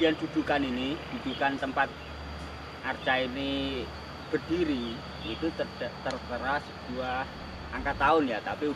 dudukan ini, dudukan tempat arca ini berdiri itu tertera sebuah angka tahun ya, tapi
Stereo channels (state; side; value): identical; both; correlation 1.00